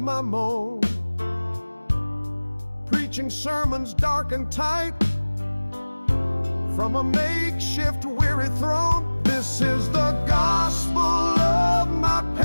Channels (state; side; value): inverted; both; correlation -1.00